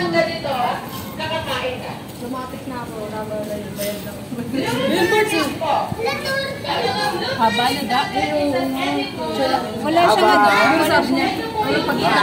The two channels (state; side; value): identical; both; correlation 1.00